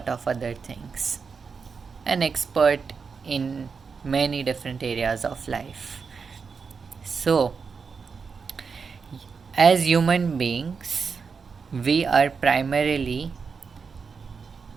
of other things. An expert in many different areas of life. So, as human beings, we are primarily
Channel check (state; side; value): quieter; left; 5.4 dB